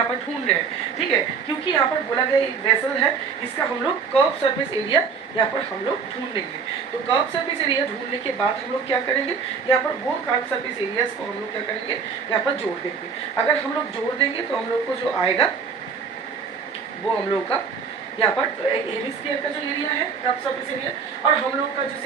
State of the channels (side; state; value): left; quieter; 5.8 dB